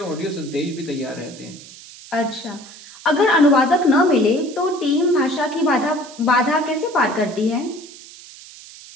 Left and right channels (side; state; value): right; noise; hiss, 18 dB below the sound